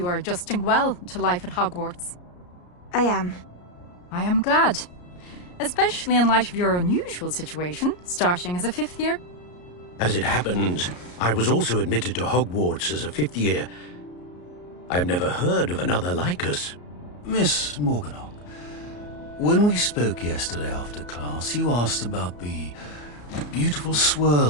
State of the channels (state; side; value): late; right; 34 ms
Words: are adjusting well to life at Hogwarts. I am. I am glad. Especially in light of your unusual situation, starting as a 5th year. As it happens, I was also admitted to Hogwarts as a 5th year. I've never heard of another like us. Miss Morganach, when we spoke yesterday after class, you asked about the beautiful